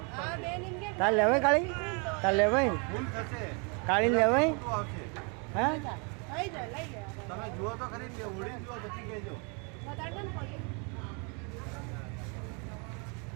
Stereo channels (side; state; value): left; quieter; 34.4 dB